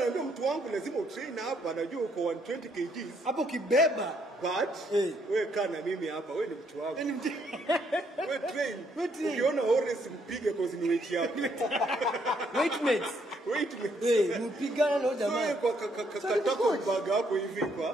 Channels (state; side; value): normal; both; correlation 0.71